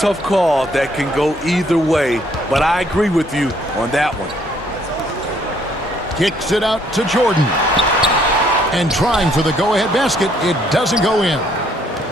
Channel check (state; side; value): normal; both; correlation 0.66